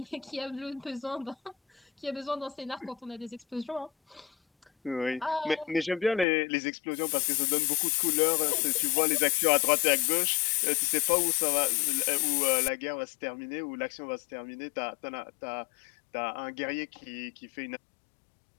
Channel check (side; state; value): right; drops out; at 6.2 s